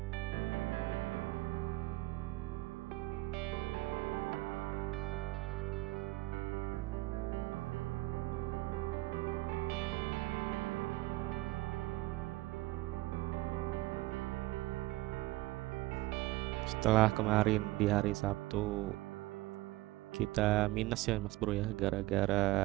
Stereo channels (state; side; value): quieter; left; 18.7 dB